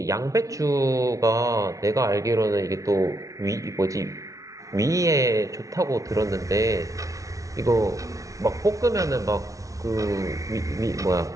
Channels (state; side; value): late; left; 0.16 ms